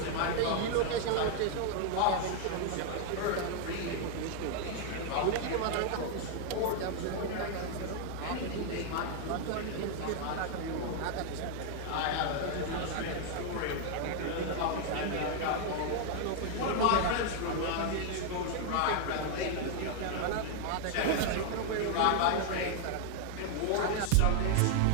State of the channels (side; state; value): both; different; correlation 0.00